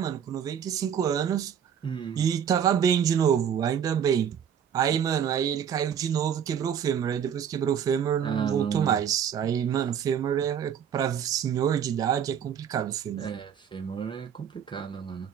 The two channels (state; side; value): quieter; left; 8.4 dB